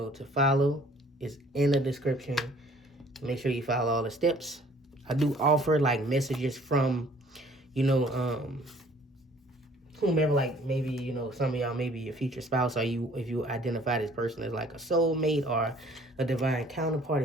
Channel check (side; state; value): both; normal; correlation 0.56